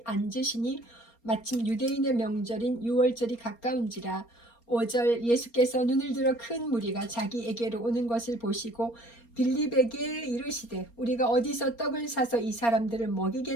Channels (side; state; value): right; late; 4.3 ms